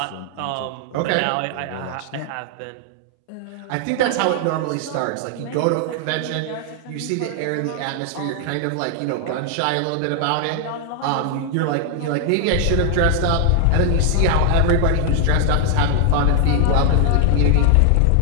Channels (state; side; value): different; both; correlation 0.00